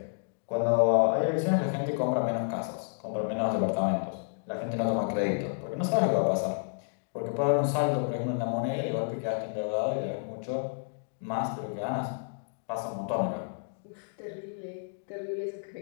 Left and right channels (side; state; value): right; silent; digital silence